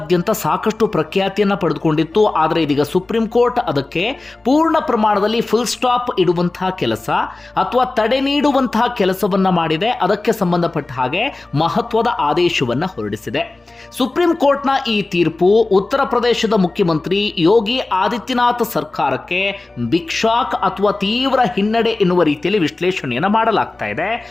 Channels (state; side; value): quieter; right; 3.2 dB